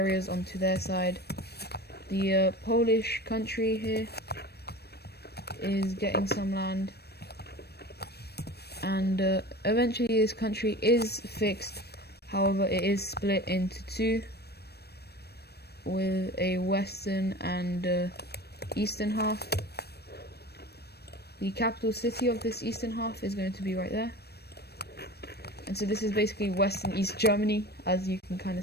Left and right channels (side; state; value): right; late; 0.47 ms